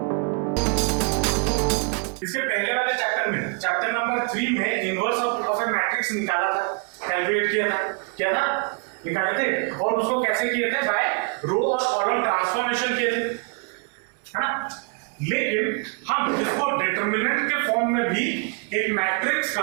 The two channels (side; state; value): left; quieter; 35.4 dB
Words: इसके पहले वाले चैप्टर में, चैप्टर नंबर 3 में इनवर्स ऑफ ए मैट्रिक्स निकाला था, कैलकुलेट किया था, क्या था, निकाले थे। और उसको कैसे किए थे, बाय रो और कॉलम ट्रांसफॉर्मेशन किए थे, है ना। लेकिन हम इसको डिटरमिनेंट के फॉर्म में भी एक मैट्रिक्स